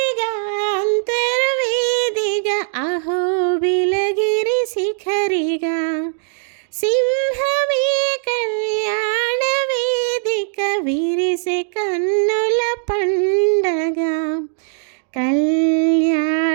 అంతర్వేదిగా అహోబిలగిరి శిఖరిగా. సింహమే కళ్యాణ వేదిక విరిసే కన్నుల పండగ.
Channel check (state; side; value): silent; left; digital silence